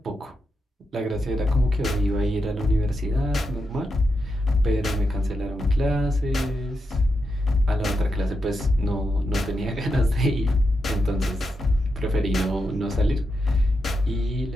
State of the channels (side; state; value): both; normal; correlation 0.86